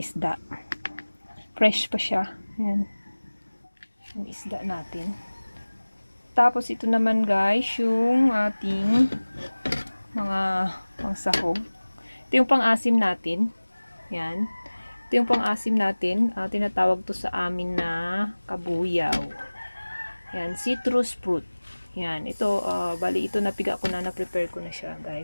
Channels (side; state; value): both; inverted; correlation -1.00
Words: isda. Fresh pa siya. Ayan. Yung isda natin. Tapos ito naman guys, yung ating mga pangsahog. Ito yung pang-asim natin. Ayan. Ito yung pang-asim natin. Tinatawag to sa amin na kabuyaw. Ayan, citrus fruit. Ayan, ito, bali ito napiga ko na, na-prepare ko na siya